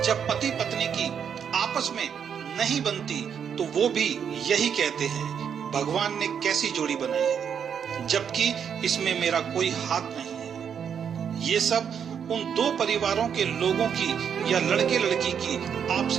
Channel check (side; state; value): left; quieter; 7.7 dB